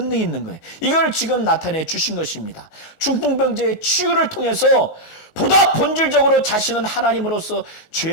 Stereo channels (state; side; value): late; right; 17 ms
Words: 있는 거예요. 이걸 지금 나타내 주신 것입니다. 중풍병자의 치유를 통해서 보다 본질적으로 자신은 하나님으로서